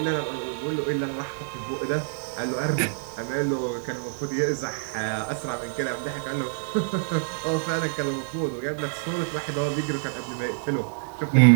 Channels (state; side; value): silent; left; digital silence